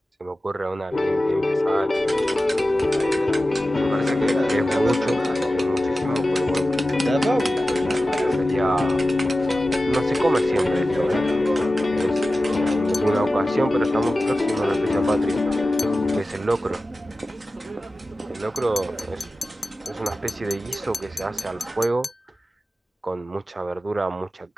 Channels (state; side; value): normal; both; correlation 0.94